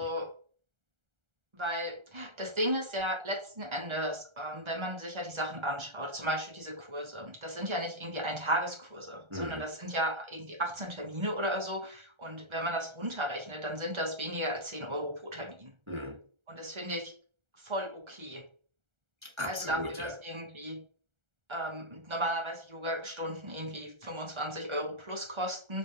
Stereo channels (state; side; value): late; left; 1.3 ms